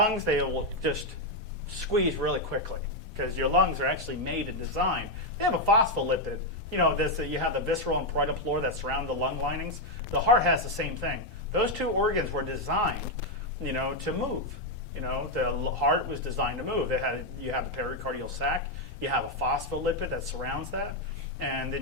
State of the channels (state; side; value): normal; both; correlation 0.02